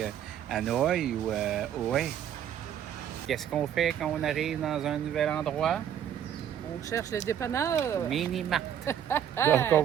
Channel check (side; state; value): left; quieter; 9.7 dB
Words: Hanoï ou ouais. Qu'est-ce qu'on fait quand on arrive dans un nouvel endroit? On cherche les dépanneurs. Mini-mart. Donc, on